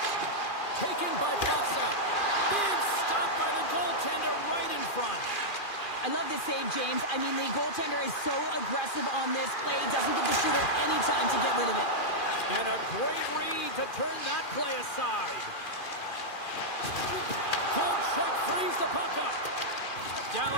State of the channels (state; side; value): late; right; 2.4 ms